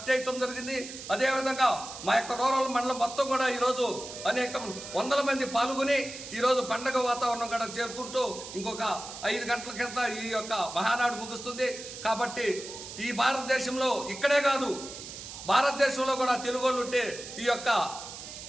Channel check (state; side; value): noise; right; hiss, 11 dB below the sound